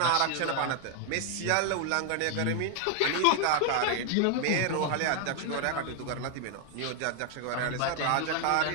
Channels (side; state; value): both; different; correlation 0.00